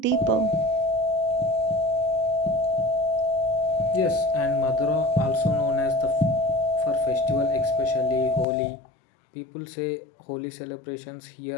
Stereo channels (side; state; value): right; drops out; at 8.5 s